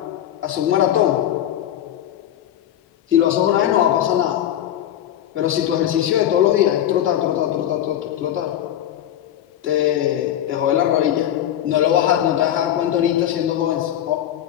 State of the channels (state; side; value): quieter; right; 11.3 dB